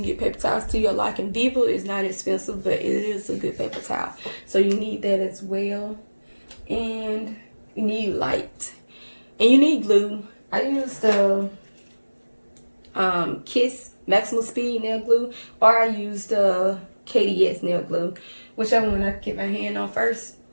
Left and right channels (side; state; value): both; inverted; correlation -1.00